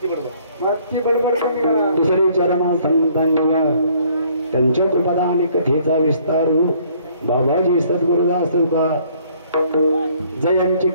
बडबड कमी करा दुसरी चरणा संतांना त्यांच्या कृपादान कथेचा विस्तार बाबाजी सद्गुरुदास का जयांची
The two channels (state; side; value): inverted; both; correlation -0.61